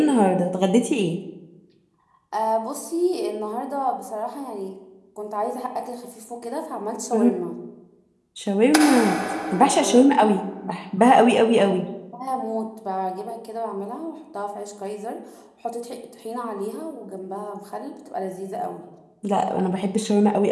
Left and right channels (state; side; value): identical; both; correlation 1.00